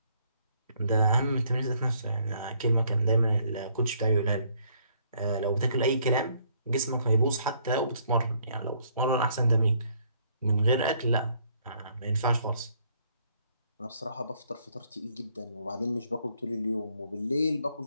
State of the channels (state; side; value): inverted; both; correlation -0.67